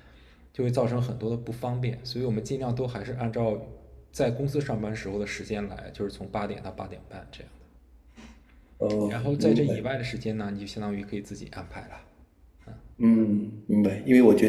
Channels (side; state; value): both; identical; correlation 1.00